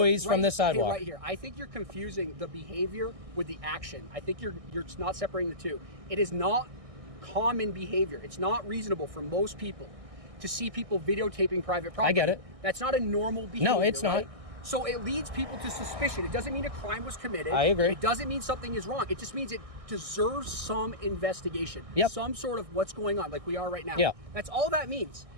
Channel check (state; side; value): late; left; 1.6 ms